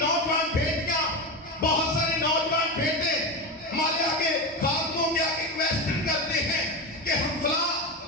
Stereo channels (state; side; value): normal; both; correlation 0.18